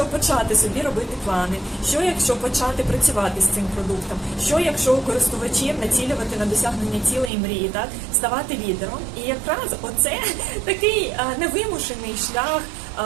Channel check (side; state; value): left; drops out; at 7.3 s